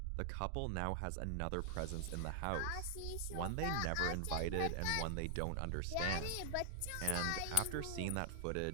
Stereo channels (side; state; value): both; different; correlation 0.00